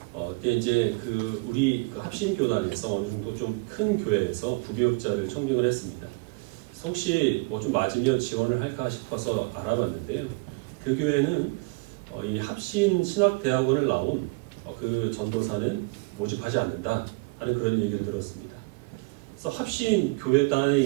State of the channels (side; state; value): left; quieter; 28.0 dB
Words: 그때 이제 우리 합신교단에서 어느 정도 좀 큰 교회에서 부교육자를 청빙을 했습니다. 그래서 혹시 뭐 좀 맞으면 지원을 할까 싶어서 알아봤는데요. 그 교회는 이 합신 신학대학원을 나온 그 전도사는 모집하지 않는다 하는 그런 얘기를 들었습니다. 그래서 합신 교회단에